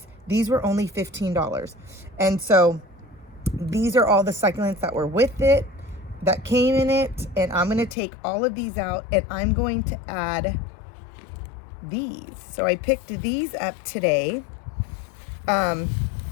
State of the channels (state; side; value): drops out; right; at 8.0 s